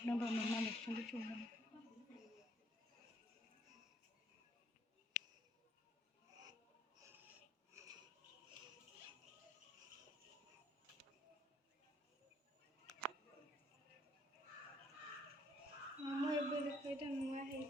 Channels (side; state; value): both; normal; correlation 0.65